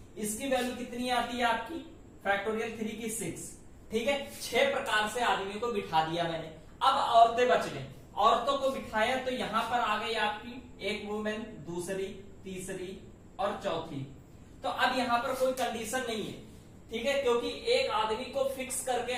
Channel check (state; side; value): identical; both; correlation 1.00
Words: इसकी वैल्यू कितनी आती है आपकी, फैक्टोरियल 3 की 6, ठीक है। 6 प्रकार से आदमियों को बिठा दिया मैंने। अब औरतें बच गई, औरतों को बिठाया, तो यहां पर आ गई आपकी एक वुमेन, दूसरी, तीसरी और चौथी। तो अब यहां पर कोई कंडीशन नहीं है, ठीक है, क्योंकि एक आदमी को फिक्स करके